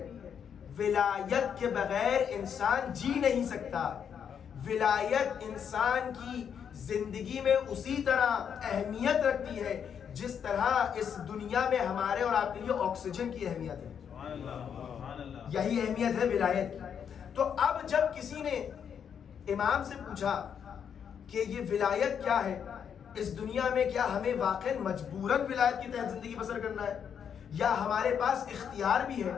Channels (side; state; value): right; quieter; 7.8 dB